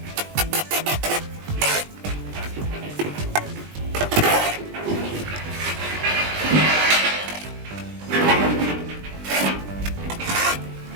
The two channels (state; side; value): late; left; 20 ms